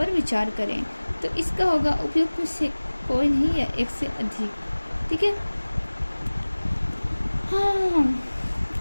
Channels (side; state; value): both; inverted; correlation -1.00